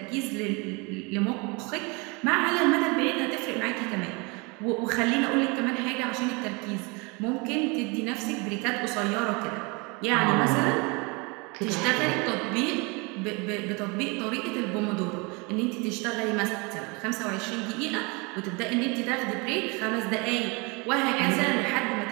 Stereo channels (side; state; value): left; quieter; 28.8 dB